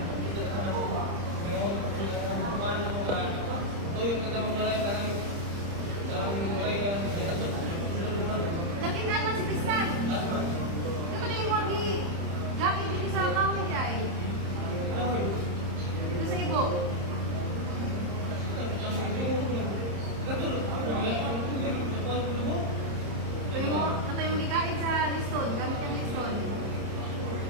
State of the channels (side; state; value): left; late; 30 ms